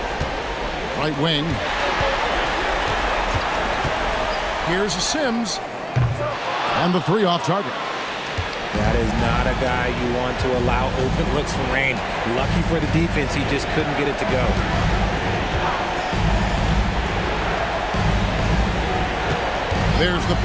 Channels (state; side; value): identical; both; correlation 1.00